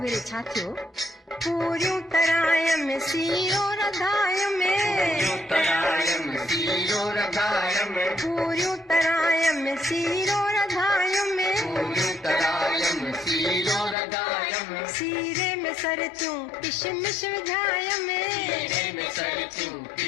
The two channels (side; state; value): right; drops out; at 14.0 s